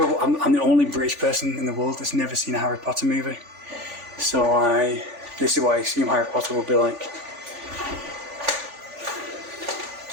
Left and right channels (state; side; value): late; left; 3.4 ms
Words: the only British person in the world that's never seen a Harry Potter movie. So this is what I assume Harry Potter will be like.